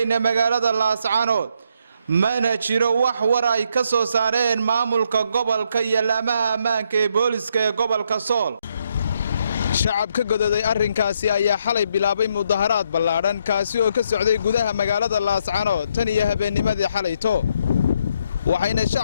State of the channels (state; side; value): inverted; both; correlation -0.74